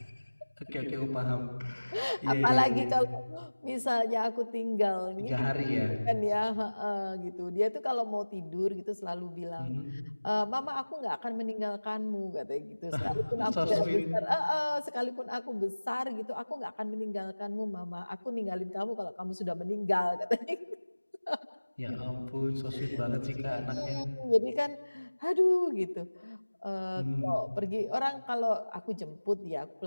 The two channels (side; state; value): both; inverted; correlation -1.00